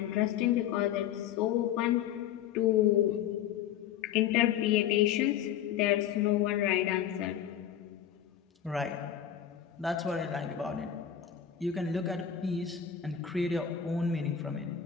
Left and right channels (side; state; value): right; quieter; 9.5 dB